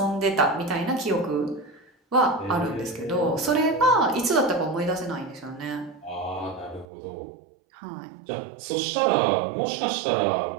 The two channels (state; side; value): drops out; left; at 6.9 s